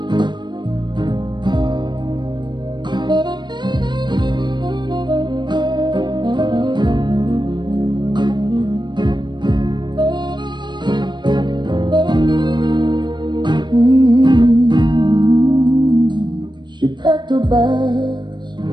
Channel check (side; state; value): left; late; 0.22 ms